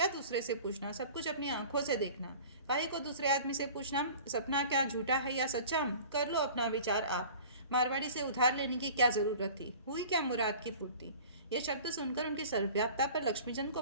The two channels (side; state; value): both; inverted; correlation -0.42